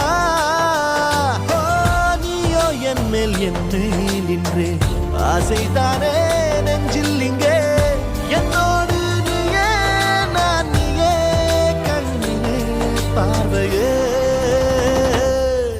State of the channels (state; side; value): identical; both; correlation 1.00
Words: நீயோ என் மேல் என்னை நின்றே ஆசைதானே